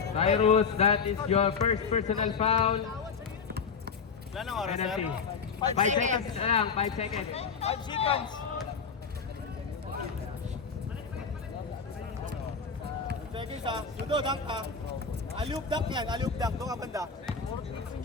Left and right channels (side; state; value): right; quieter; 5.6 dB